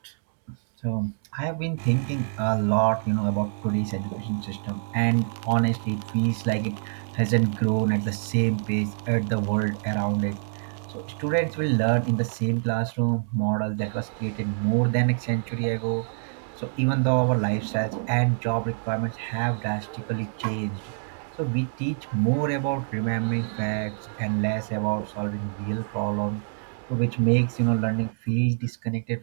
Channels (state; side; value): silent; left; digital silence